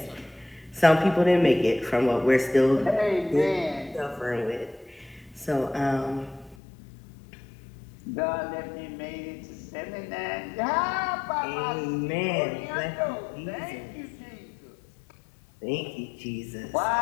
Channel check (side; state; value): right; drops out; at 6.6 s